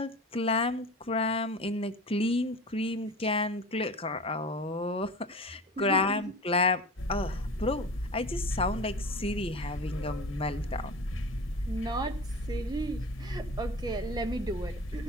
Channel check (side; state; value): both; normal; correlation 0.35